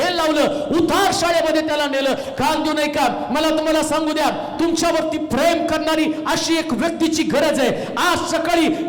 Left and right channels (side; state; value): both; identical; correlation 1.00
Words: लावलं, उतार शाळेमध्ये त्याला नेलं. कान देऊ नये का? मला तुम्हाला सांगू द्या, तुमच्यावरती प्रेम करणारी अशी एक व्यक्तीची गरज आहे. आज सकाळी